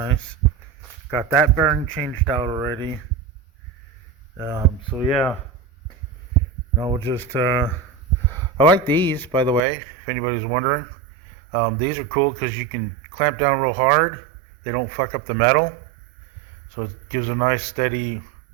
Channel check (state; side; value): drops out; left; at 9.6 s